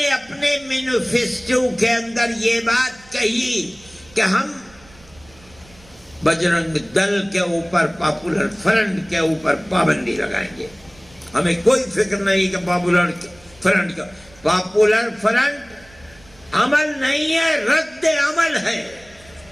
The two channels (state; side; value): noise; right; rumble, 26 dB below the sound